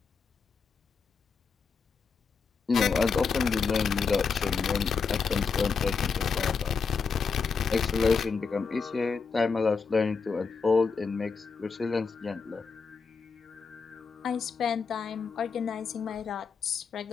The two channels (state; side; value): quieter; right; 5.3 dB